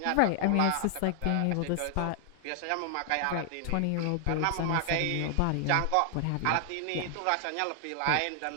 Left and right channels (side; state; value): both; different; correlation 0.00